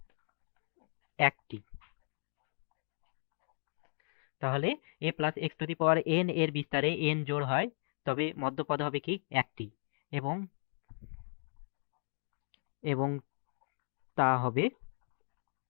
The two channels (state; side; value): silent; right; 54 dB below the other